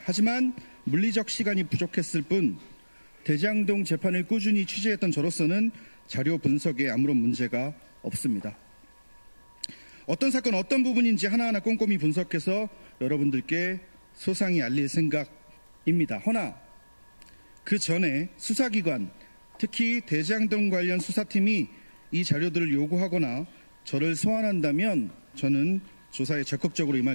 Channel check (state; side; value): inverted; both; correlation -1.00